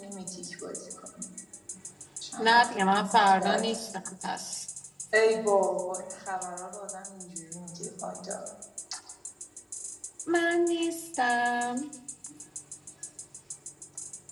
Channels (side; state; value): both; identical; correlation 1.00